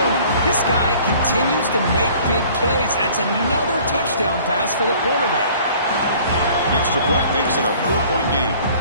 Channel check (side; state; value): both; inverted; correlation -0.52